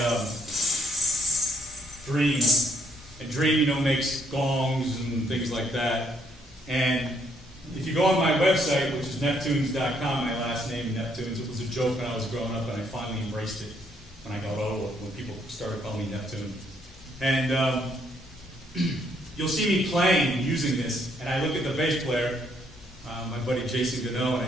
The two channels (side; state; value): both; normal; correlation 0.69